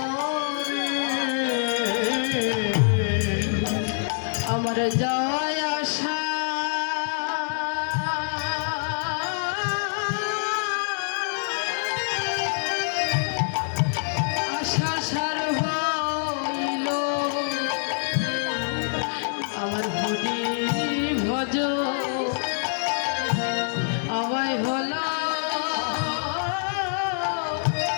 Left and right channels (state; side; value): silent; right; 57 dB below the other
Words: রে। আমার যাওয়ায় আশা আশা সার হইল আমার হরি ভজ আমায় হলো